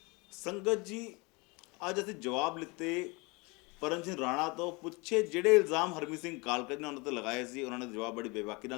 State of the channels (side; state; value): right; quieter; 27.2 dB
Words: ਸੰਗਤ ਜੀ, ਅੱਜ ਅਸੀਂ ਜਵਾਬ ਲਿੱਤੇ ਪਰਮ ਸਿੰਘ ਰਾਣਾ ਤੋਂ। ਪੁੱਛੇ ਜਿਹੜੇ ਇਲਜ਼ਾਮ ਹਰਮੀਤ ਸਿੰਘ ਕਾਲਕਾ ਨੇ ਉਹਨਾਂ ਤੇ ਲਗਾਏ ਸੀ, ਉਹਨਾਂ ਨੇ ਜਵਾਬ ਬੜੀ ਬੇਬਾਕੀ